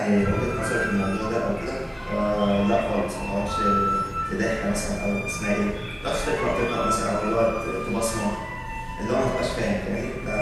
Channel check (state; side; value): identical; both; correlation 1.00